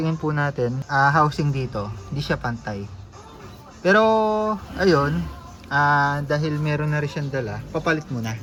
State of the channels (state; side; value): identical; both; correlation 1.00